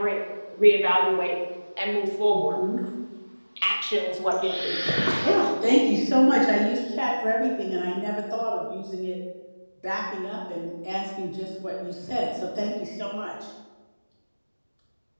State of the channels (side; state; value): both; inverted; correlation -1.00